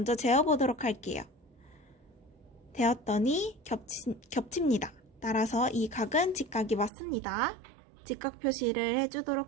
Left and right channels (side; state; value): left; drops out; at 6.9 s